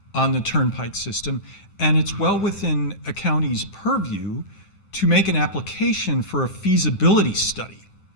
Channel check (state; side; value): late; right; 10 ms